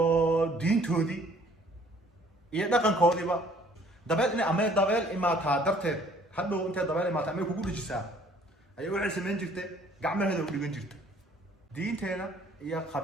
diintoodii iyo dhaqankoodiiba dabeel in ama dabeel imaataa darteed hadhow intee dabeel imaataa ama kugu dhijisaa ay waxay sameyn jirtay gacmaheeda u dhigan jirtay diinteena iyo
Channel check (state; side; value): normal; both; correlation 0.57